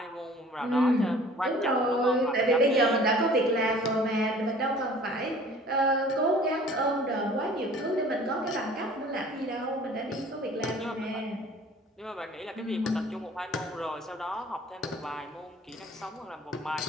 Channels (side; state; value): both; normal; correlation 0.49